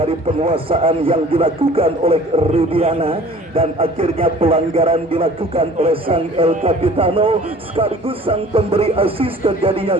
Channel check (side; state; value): both; normal; correlation 0.48